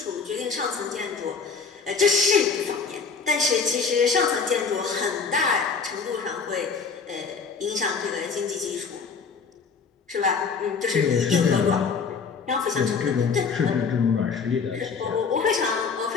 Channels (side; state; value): right; quieter; 5.3 dB